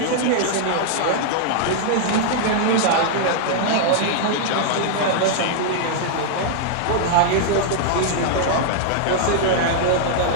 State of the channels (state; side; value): different; both; correlation -0.01